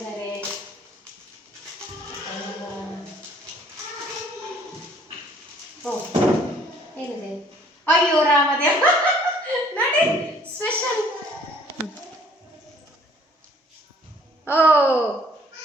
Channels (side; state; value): both; normal; correlation 0.58